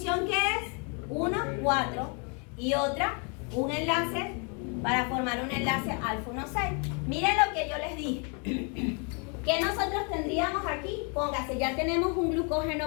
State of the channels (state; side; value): quieter; right; 36.2 dB